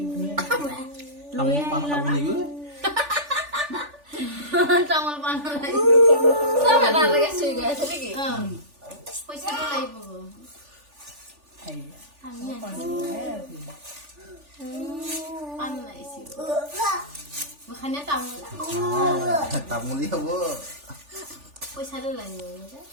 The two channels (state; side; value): late; left; 3.4 ms